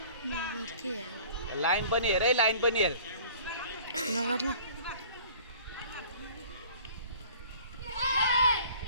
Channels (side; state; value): both; inverted; correlation -0.49